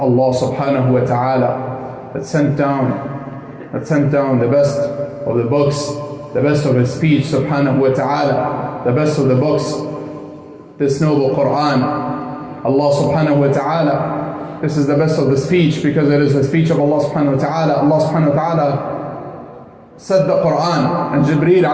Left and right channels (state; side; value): identical; both; correlation 1.00